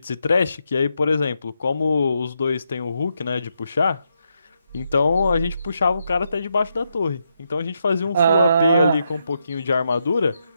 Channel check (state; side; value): inverted; both; correlation -0.81